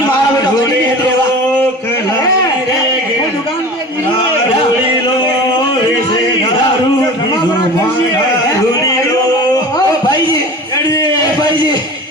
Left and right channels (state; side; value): normal; both; correlation 0.37